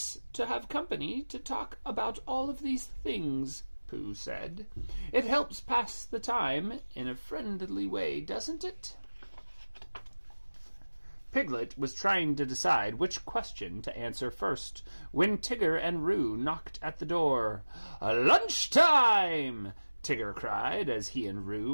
to have company to talk about all of these things, Pooh said. It helps pass the time in a friendly way, doesn't it? Piglet was trying to decide which question to answer first when Tigger and Roo knocked at the door. Lunchtime! Tigger cried as he and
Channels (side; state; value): both; inverted; correlation -1.00